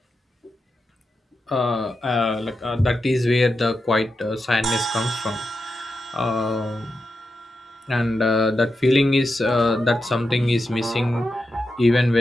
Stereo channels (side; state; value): both; normal; correlation 0.88